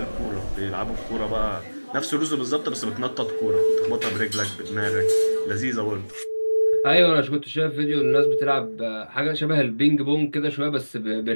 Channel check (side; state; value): both; inverted; correlation -1.00